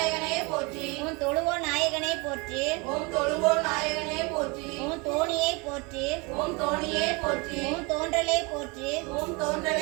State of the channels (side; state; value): left; quieter; 28.4 dB